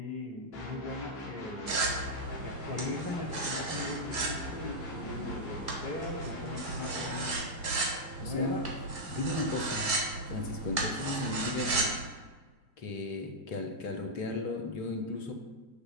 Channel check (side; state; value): right; late; 1.9 ms